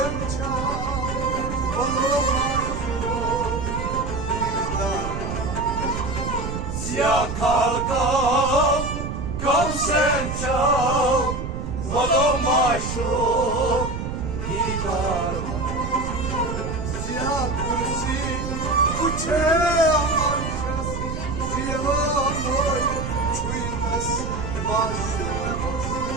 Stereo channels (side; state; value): right; noise; rumble, 5 dB below the sound